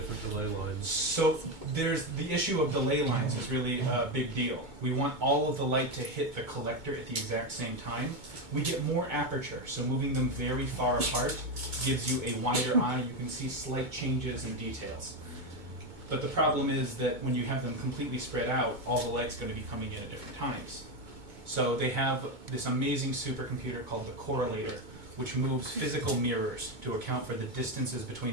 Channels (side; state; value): left; late; 2.2 ms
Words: delay lines? So there's the issue of delay lines is really a big deal. We want all of the light to hit the collector at the exact same time. We get more aperture, so moving them very far apart gives you a wider eye. You can see slight changes in details. But the problem is that when you have them completely spread out, all the light's going to be coming in at different times. So they have this amazing supercomputer called the correlator, which moves physical mirrors to account for the distances